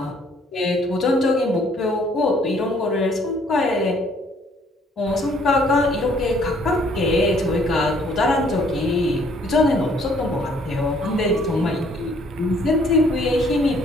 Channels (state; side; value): normal; both; correlation 0.62